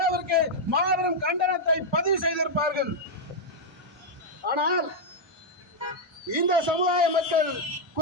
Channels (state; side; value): normal; both; correlation -0.02